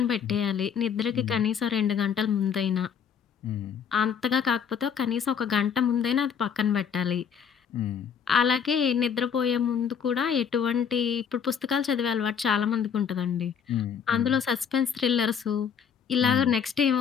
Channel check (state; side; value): quieter; right; 7.4 dB